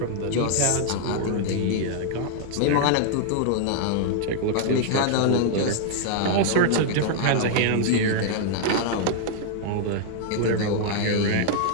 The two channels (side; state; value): both; different; correlation -0.01